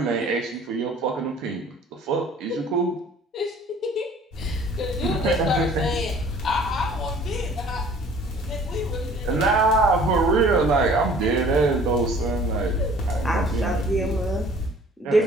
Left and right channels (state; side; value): normal; both; correlation 0.52